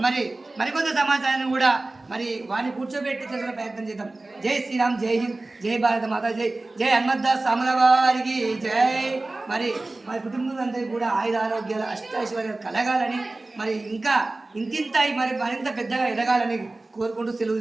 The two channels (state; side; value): quieter; left; 3.0 dB